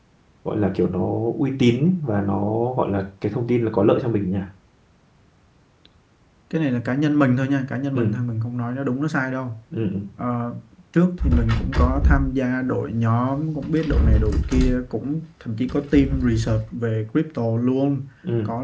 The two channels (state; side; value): identical; both; correlation 1.00